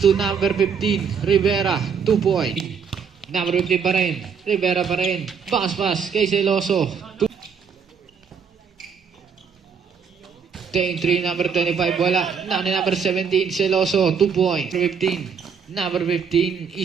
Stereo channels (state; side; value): quieter; left; 6.4 dB